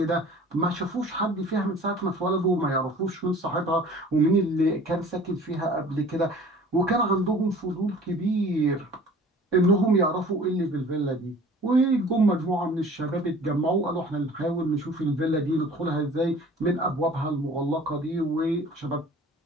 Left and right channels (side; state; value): both; normal; correlation 0.47